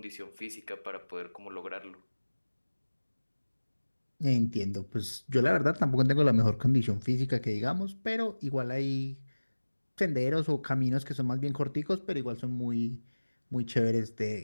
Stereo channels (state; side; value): inverted; both; correlation -1.00